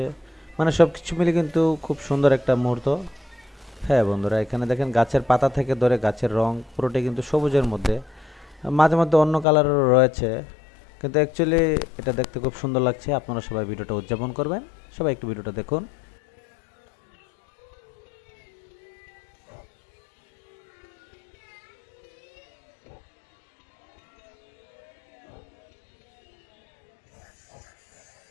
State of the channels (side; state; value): right; drops out; at 9.5 s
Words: মানে সব কিছু মিলে কিন্তু খুব সুন্দর একটা মুহূর্ত। হ্যাঁ বন্ধুরা, এখানে দেখেন গাছের পাতা থেকে ধরে গাছের রং পুরোটাই কিন্তু সবুজের মধ্যে, মাঝে মধ্যে অন্য কালারও রয়েছে, কিন্তু অ্যাকচুয়ালি এটা দেখতে খুব সুন্দর লাগছে। আপনারা সবাই ভিডিওটা উদযাপন করবেন, সবাই একটু ভিডিওটা দেখুন।